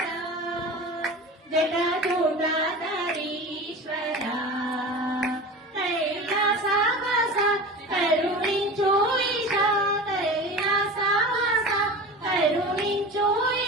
జటాజూటాధరీశ్వర కైలాసవాస కరుణించు ఈశా కైలాసవాస కరుణించు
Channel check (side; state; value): both; normal; correlation 0.33